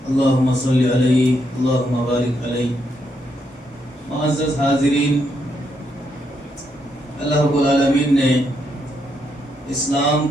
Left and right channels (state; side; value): normal; both; correlation 0.78